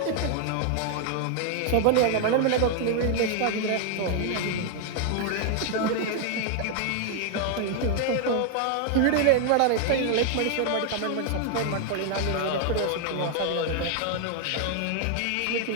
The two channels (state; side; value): different; both; correlation 0.00